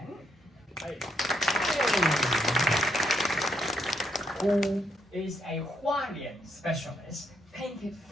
who is a Hualian specialist, painted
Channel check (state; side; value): normal; both; correlation 0.75